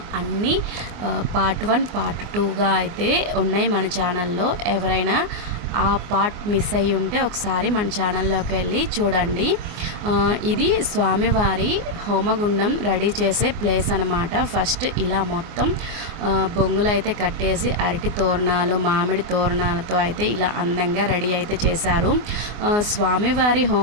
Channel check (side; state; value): left; late; 24 ms